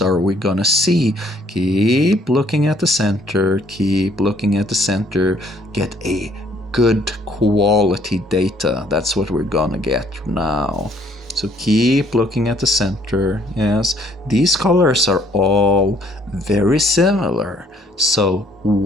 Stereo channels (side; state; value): both; normal; correlation 0.63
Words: we gonna see? Keep looking at the center, keep looking at the center. Get a good quality data. That's what we're gonna get now. So keep looking at the center. Yes, these colors are all very similar. So